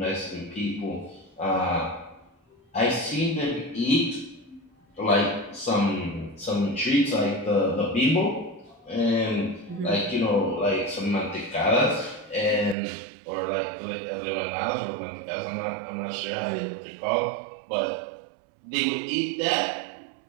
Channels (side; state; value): left; drops out; at 12.8 s